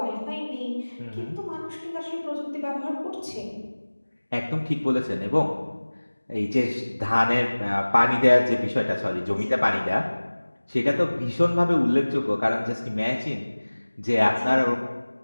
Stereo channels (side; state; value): both; inverted; correlation -1.00